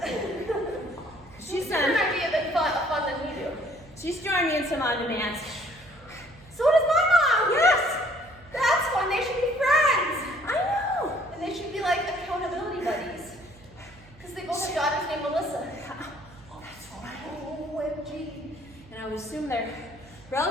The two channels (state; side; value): noise; right; hum, 24 dB below the sound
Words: She's Different done. idea than fun than we do. She's joined me in some on-demands. So does my mom. Yes. That's fun. They should be friends. I know. And they should be like accountability buddies. Because they both have daughters named Melissa. Oh, that's right. OMG. And I would assume they're